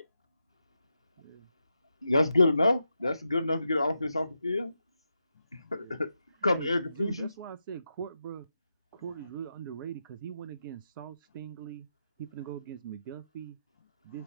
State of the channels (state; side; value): inverted; both; correlation -0.86